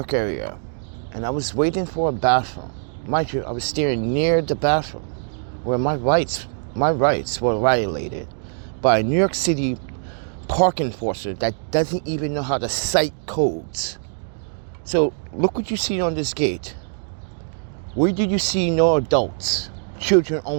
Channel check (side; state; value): left; silent; digital silence